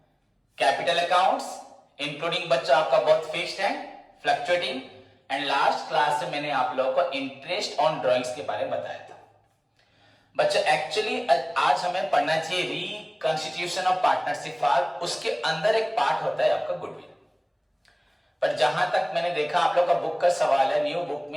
capital accounts including बच्चों आपका बहुत फिक्स्ड है, फ्लक्चुएटिंग, एंड लास्ट क्लास में मैंने आप लोगों को इंटरेस्ट ऑन ड्रॉइंग्स के बारे में बताया था। बच्चों एक्चुअली आज हमें पढ़ना चाहिए रिकंस्टिट्यूशन ऑफ पार्टनरशिप फॉर्म। उसके अंदर एक पार्ट होता है आपका गुडविल। पर जहां तक मैंने देखा आप लोग का बुक का सवाल है, न्यू बुक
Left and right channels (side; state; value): both; identical; correlation 1.00